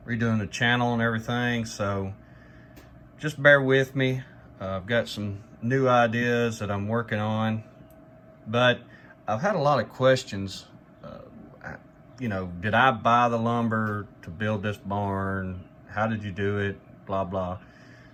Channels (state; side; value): identical; both; correlation 1.00